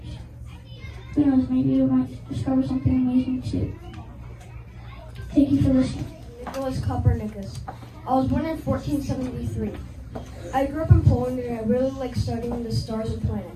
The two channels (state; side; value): identical; both; correlation 1.00